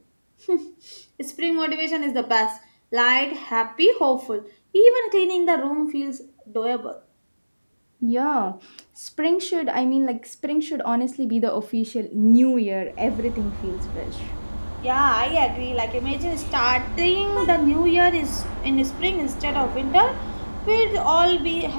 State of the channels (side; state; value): both; inverted; correlation -1.00